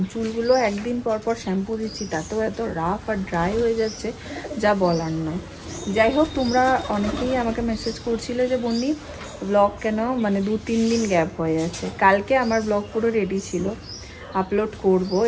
চুলগুলো একদিন পর পর শ্যাম্পু দিচ্ছি, তাতেও এত রাফ আর ড্রাই হয়ে যাচ্ছে যা বলার নয়। যাই হোক, তোমরা অনেকেই আমাকে মেসেজ করছিলে যে বন্নি ব্লগ কেন মানে 2-3 দিন গ্যাপ হয়ে যাচ্ছে। কালকে আমার ব্লগ পুরো রেডি ছিল, আপলোড করব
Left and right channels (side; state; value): both; identical; correlation 1.00